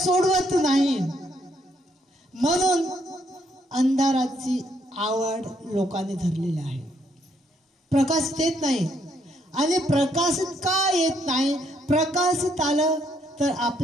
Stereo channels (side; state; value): both; normal; correlation 0.71